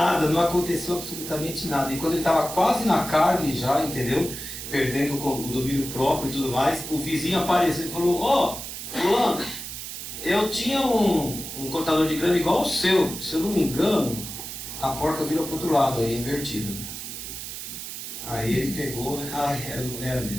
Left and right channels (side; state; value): right; noise; hiss, 8 dB below the sound